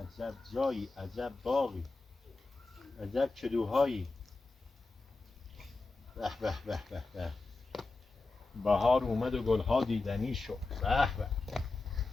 جایی عجب باغی عجب کدوهایی به به به به به بهار اومد و گلها دیدنی شد به به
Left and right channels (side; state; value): right; quieter; 3.5 dB